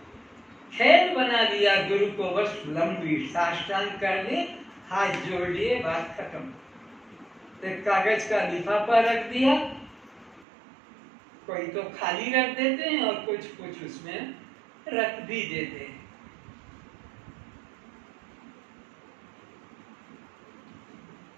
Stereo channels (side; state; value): left; drops out; at 10.5 s